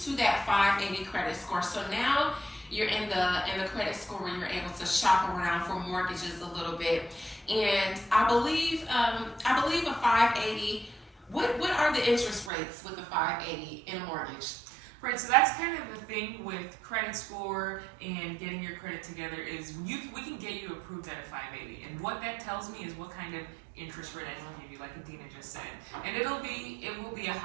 that 580 credit score. So now you're in the credit score where you're able to shop around for mortgages a little bit. And I believe a 580. What are the interest rates with the 580 in a mortgage? Right, so that's kind of the thing with credit score and getting your credit together is we can get you approved at a 580. And what that tells me is what kind of interest rate I can give you, like Adina just said. And it will be a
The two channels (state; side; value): drops out; left; at 12.5 s